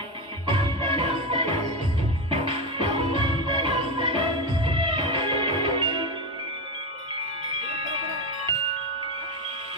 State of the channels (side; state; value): both; normal; correlation 0.15